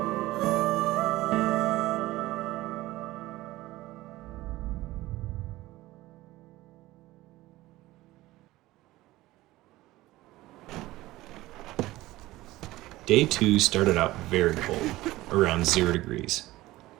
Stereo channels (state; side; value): quieter; left; 17.7 dB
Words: Day 2 started out very cold, around 0 degrees.